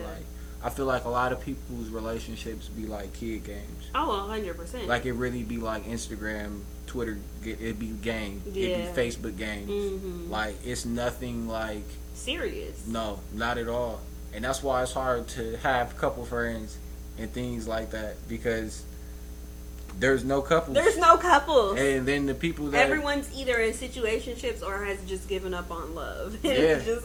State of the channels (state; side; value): identical; both; correlation 1.00